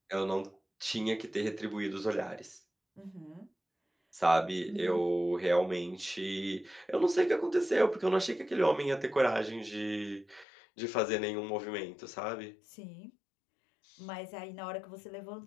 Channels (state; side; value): drops out; right; at 10.5 s